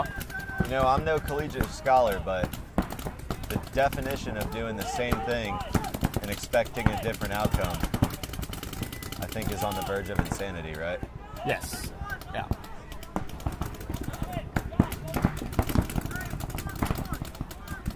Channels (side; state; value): both; identical; correlation 1.00